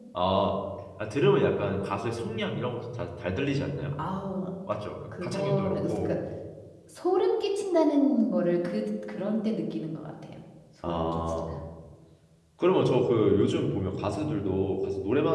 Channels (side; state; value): both; identical; correlation 1.00